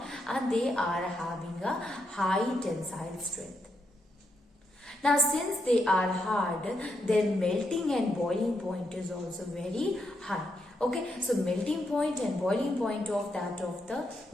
and they are having a high tensile strength. Now since they are hard, their melting and boiling point is also very high. Okay, so melting point and boiling point of the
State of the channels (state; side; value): normal; both; correlation 0.81